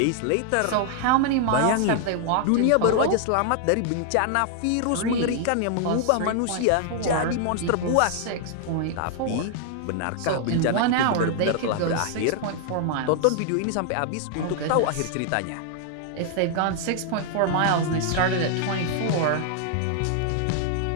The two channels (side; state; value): both; different; correlation 0.00